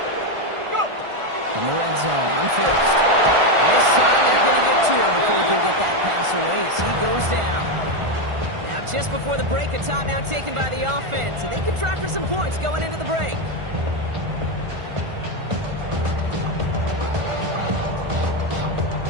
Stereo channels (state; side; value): late; left; 1.4 ms